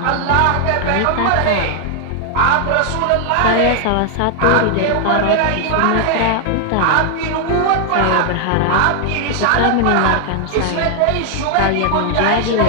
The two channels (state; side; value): different; both; correlation 0.00